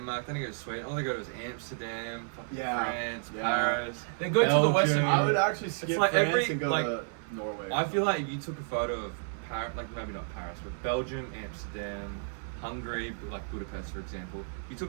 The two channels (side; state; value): left; silent; 57 dB below the other